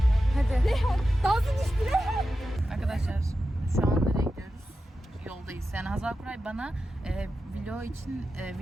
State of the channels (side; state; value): both; normal; correlation 0.91